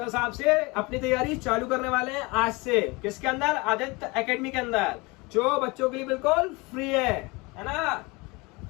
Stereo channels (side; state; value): right; quieter; 25.5 dB